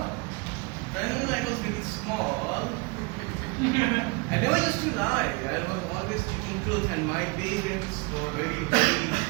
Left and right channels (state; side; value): quieter; left; 28.2 dB